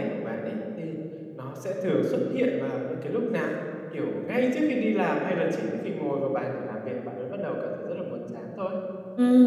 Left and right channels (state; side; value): identical; both; correlation 1.00